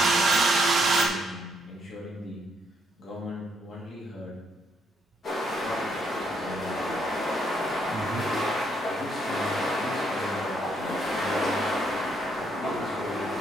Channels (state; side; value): normal; both; correlation 0.73